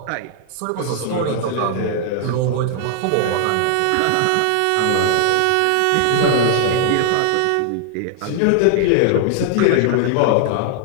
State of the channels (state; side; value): different; both; correlation 0.00